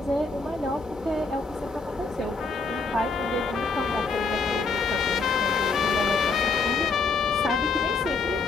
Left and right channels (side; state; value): right; quieter; 4.2 dB